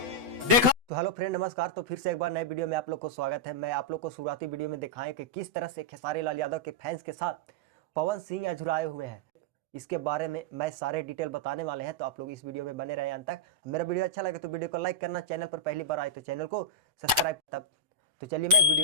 देखा तो हेलो फ्रेंड, नमस्कार। तो फिर से एक बार नए वीडियो में आप लोग को स्वागत है। मैं आप लोग को शुरुआती वीडियो में दिखाएं कि किस तरह से खेसारी लाल यादव के फैंस के साथ पवन सिंह अझुराए हुए हैं। इसके बारे में मैं सारे डिटेल बताने वाले हैं, तो आप लोग इस वीडियो में बने रहे अंत तक। मेरा वीडियो अच्छा लगे तो वीडियो को लाइक करना, चैनल पर पहली बार आए तो चैनल को सब्सक्राइब। तब तो चलिए मैं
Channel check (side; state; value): left; late; 8.0 ms